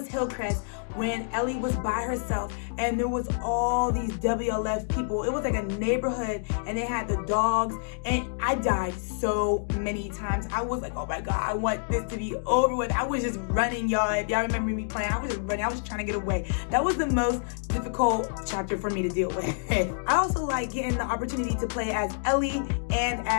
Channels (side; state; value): right; silent; digital silence